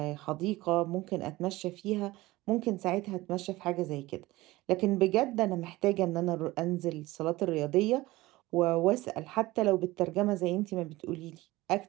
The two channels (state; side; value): quieter; left; 19.2 dB